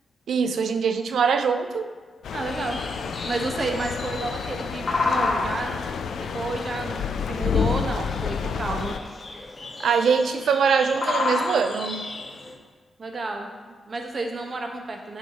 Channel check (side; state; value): both; normal; correlation 0.76